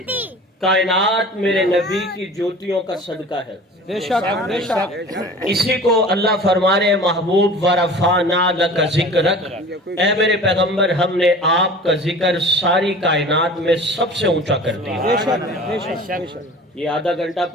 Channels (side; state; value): both; normal; correlation 0.40